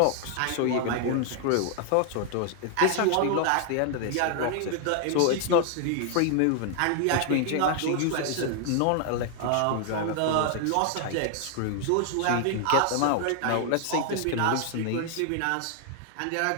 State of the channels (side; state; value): both; different; correlation 0.00